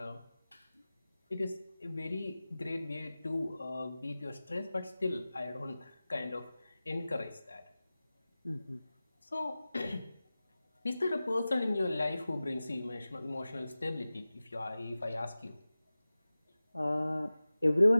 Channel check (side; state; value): both; inverted; correlation -0.97